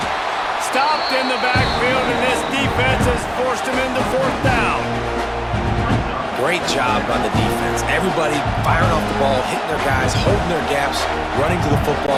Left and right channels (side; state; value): both; identical; correlation 1.00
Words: Stopped in the backfield, and this defense has forced him into 4th down. Great job on the defense. Everybody firing off the ball, hitting their guys, holding their gaps, running to the